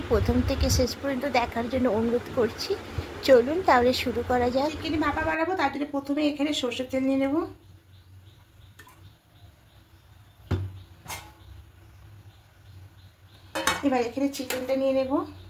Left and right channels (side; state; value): both; identical; correlation 1.00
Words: প্রথম থেকে শেষ পর্যন্ত দেখার জন্য অনুরোধ করছি। চলুন তাহলে শুরু করা যাক। চিকেন ভাপা বানাবো, তার জন্য প্রথমে এখানে সরষের তেল নিয়ে নেব। এবার এখানে চিকেনটা নিয়ে নেব।